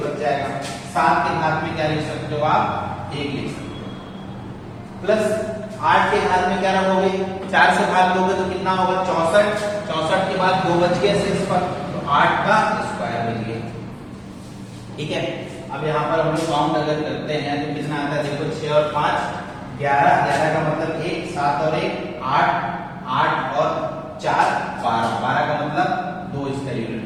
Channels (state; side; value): identical; both; correlation 1.00